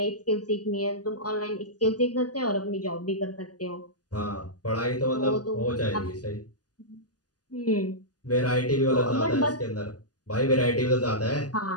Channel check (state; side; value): late; right; 0.68 ms